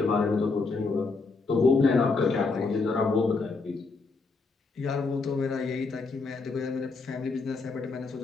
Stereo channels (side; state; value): right; quieter; 4.1 dB